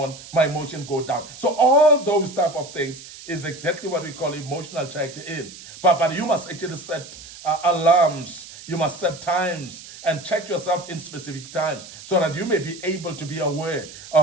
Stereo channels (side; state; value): right; noise; hiss, 16 dB below the sound